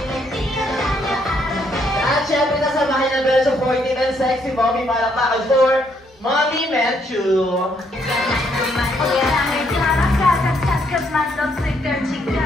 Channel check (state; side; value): normal; both; correlation 0.72